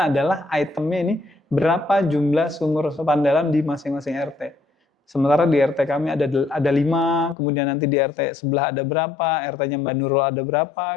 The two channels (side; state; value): right; drops out; at 7.4 s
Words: adalah itemnya ini berapa jumlah sumur resapan dalam di masing-masing RT. Sementara di RT kami ada 5, kemudian nanti di RT sebelah ada berapa, RT-nya Mbak Nurul ada berapa